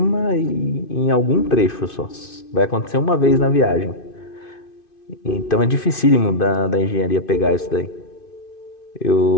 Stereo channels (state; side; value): late; right; 2.5 ms